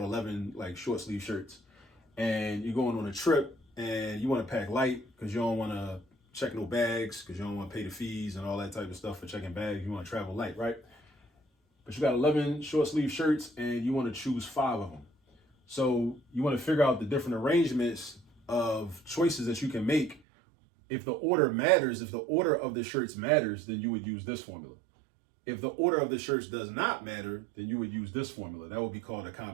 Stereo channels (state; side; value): drops out; left; at 20.2 s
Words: 11 short sleeve shirts and you're going on a trip and you want to pack light because you don't want to check no bags, because you don't want to pay the fees and all that type of stuff for checking bags. You want to travel light, right? But you got 11 short sleeve shirts and you want to choose 5 of them. So you want to figure out the different arrangements of choices that you can make. If the order matters, if the order of the shirts matters, then you would use this formula. If the order of the shirts does not matter, then you would use this formula. That would be called a